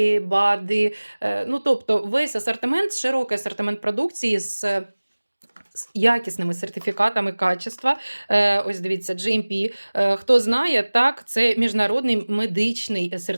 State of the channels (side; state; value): both; inverted; correlation -1.00